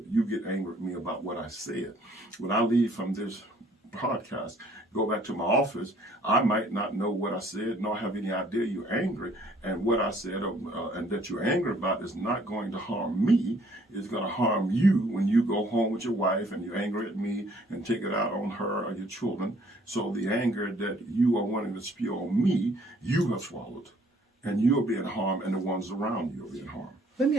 you get angry with me about what I said. When I leave from this podcast, go back to my office, I might not know what I said, nor have any idea you're angry. And what I said and that you're angry about is not going to harm me. It's going to harm you when you go home with your wife and you're angry at me and take it out on her or your children. So the anger that you are wanting to spew on me, you have swallowed. And you're being harmed, and the ones around you are being harmed. Let me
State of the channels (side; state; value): both; normal; correlation 0.60